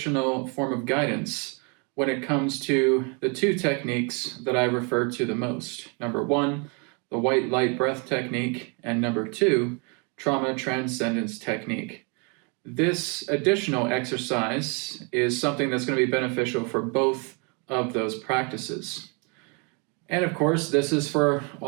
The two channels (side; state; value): left; quieter; 34.1 dB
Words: form of guidance when it comes to the two techniques that I refer to the most. Number one, the white light breath technique, and number two, trauma transcendence technique. This additional exercise is something that's going to be beneficial for both of those practices. And of course, this is for